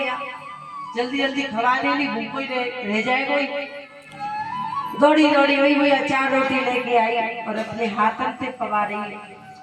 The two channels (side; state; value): both; identical; correlation 1.00